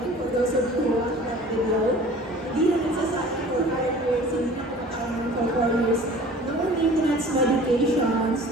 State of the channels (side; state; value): both; normal; correlation 0.46